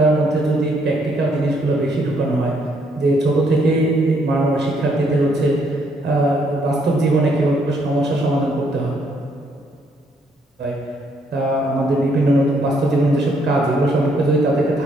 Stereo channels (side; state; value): both; normal; correlation 0.71